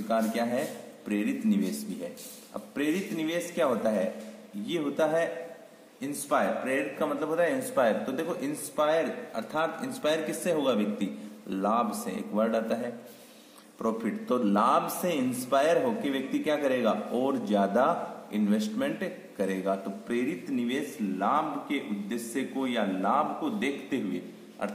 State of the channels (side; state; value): both; identical; correlation 1.00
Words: क्या है, प्रेरित निवेश भी है। अब प्रेरित निवेश क्या होता है, ये होता है इंस्पायर। प्रेरित का मतलब होता है इंस्पायर। तो देखो इंस्पायर, अर्थात इंस्पायर किससे होगा व्यक्ति, लाभ से। एक वर्ड आता है प्रॉफिट, तो लाभ से इंस्पायर होकर व्यक्ति क्या करेगा, और ज्यादा इन्वेस्टमेंट करेगा। तो प्रेरित निवेश लाभ के उद्देश्य को या लाभ को देखते हुए,